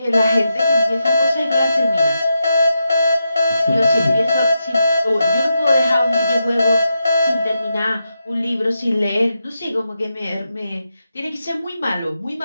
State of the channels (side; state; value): both; inverted; correlation -0.87